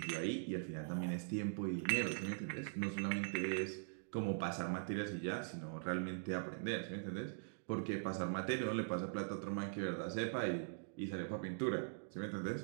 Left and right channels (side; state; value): left; silent; digital silence